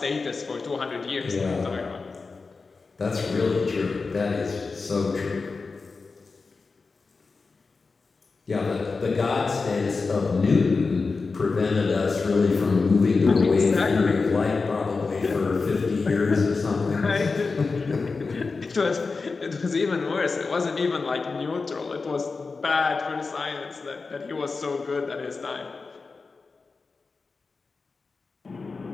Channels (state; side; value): quieter; right; 4.3 dB